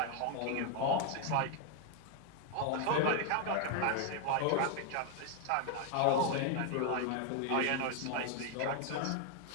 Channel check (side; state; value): both; different; correlation 0.01